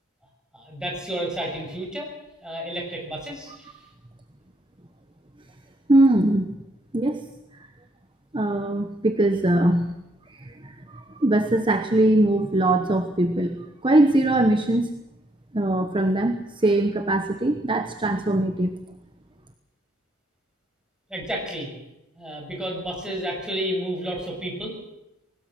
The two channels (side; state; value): both; normal; correlation 0.72